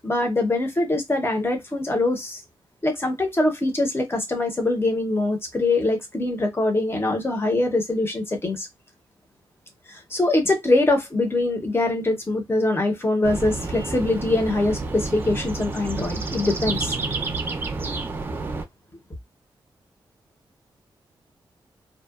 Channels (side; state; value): both; normal; correlation 0.78